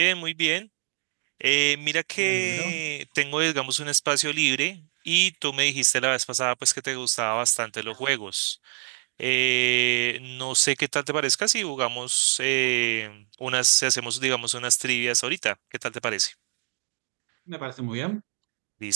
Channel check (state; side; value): silent; left; digital silence